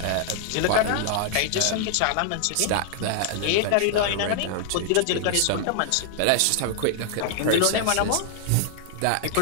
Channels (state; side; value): different; both; correlation 0.00